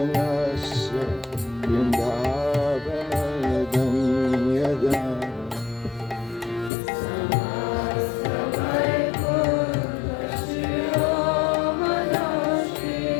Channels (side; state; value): right; drops out; at 6.7 s